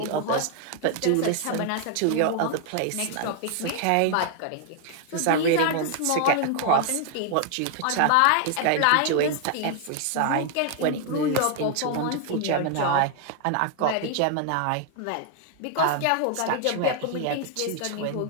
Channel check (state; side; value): different; both; correlation 0.00